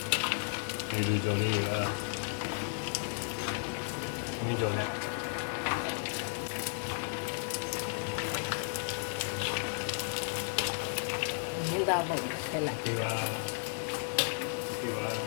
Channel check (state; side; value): silent; right; digital silence